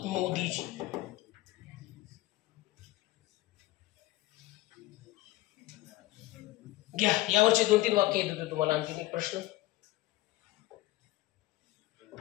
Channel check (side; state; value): right; quieter; 17.8 dB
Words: मोदीजी. घ्या यावरचे 2-3 वाक्य येत होते तुम्हाला. आणखी एक प्रश्न,